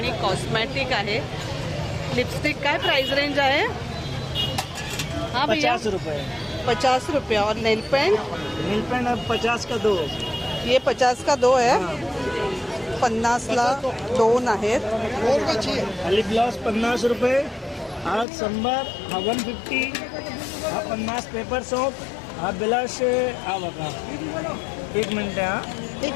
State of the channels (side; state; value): right; drops out; at 18.2 s